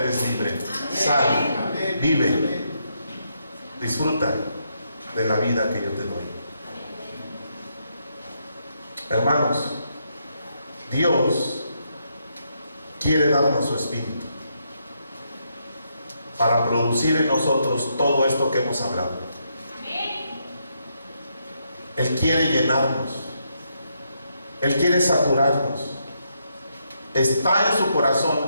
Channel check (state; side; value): inverted; both; correlation -0.78